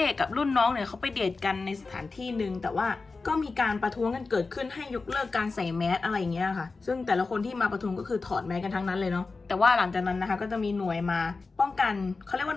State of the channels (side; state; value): right; quieter; 4.0 dB